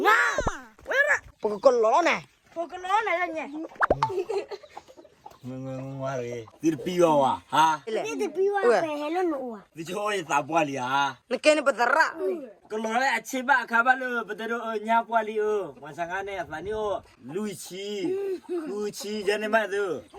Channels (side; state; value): both; identical; correlation 1.00